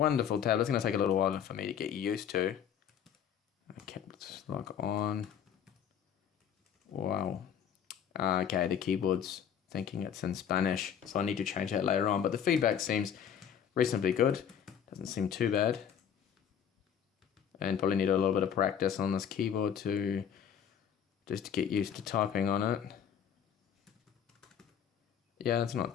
tablet. It's going to take a little while for me to get used to. Okay, let's log on. Wow. Okay, the keyboard's thinking it's in Spanish, so I need to change that later on. But the feedback seems reasonably good. Doesn't seem too bad. And probably need a little bit of practice on this keyboard to just get used to typing on it. Yeah, it's not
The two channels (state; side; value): quieter; right; 8.5 dB